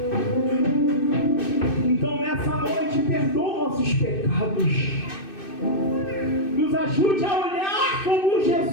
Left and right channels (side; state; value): right; late; 2.6 ms